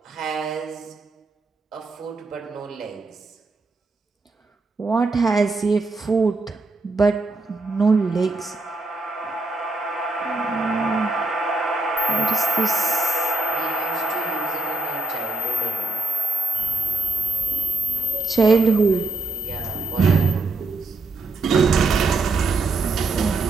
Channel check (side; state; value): left; quieter; 3.3 dB